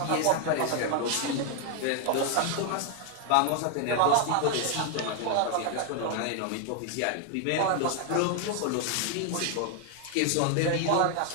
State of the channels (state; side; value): different; both; correlation 0.01